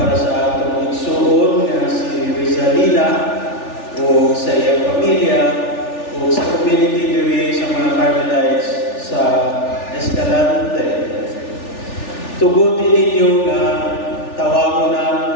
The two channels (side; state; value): right; late; 3.4 ms